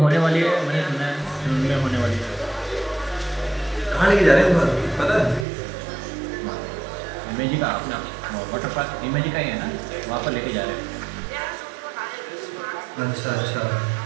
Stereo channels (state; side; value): drops out; left; at 5.5 s